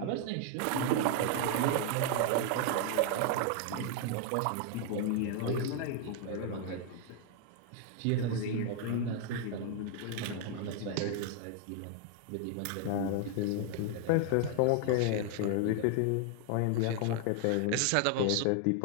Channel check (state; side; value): different; both; correlation 0.00